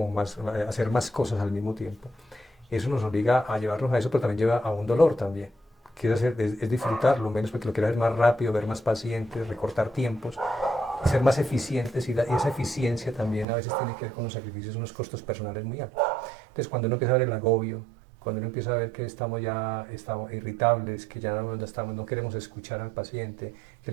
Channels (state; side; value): drops out; left; at 13.5 s